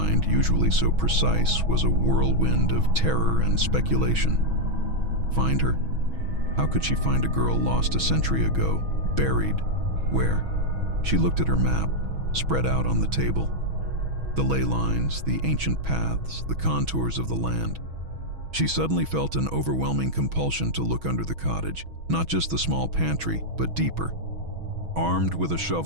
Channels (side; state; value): left; late; 6.2 ms